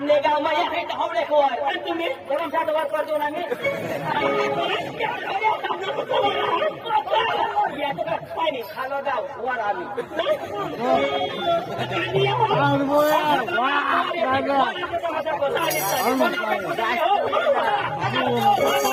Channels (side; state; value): both; identical; correlation 1.00